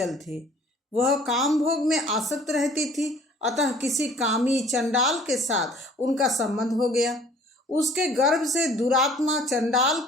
थी। वह काम भोग में आसक्त रहती थी, अतः किसी कामी चंडाल के साथ उनका संबंध हो गया। उसके गर्भ से दुरात्मा चंडाल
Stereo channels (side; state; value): both; normal; correlation 0.53